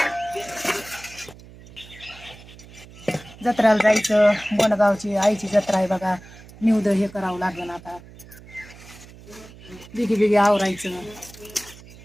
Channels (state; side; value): noise; right; hum, 20 dB below the sound